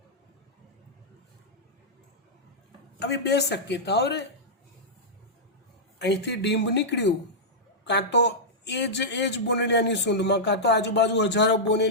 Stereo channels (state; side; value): normal; both; correlation -0.10